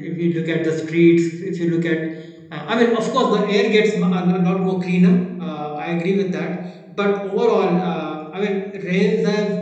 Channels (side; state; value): both; identical; correlation 1.00